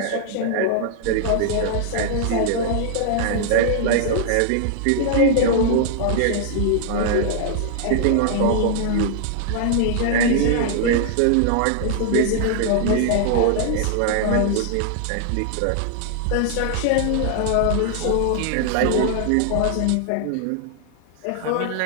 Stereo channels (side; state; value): both; different; correlation -0.01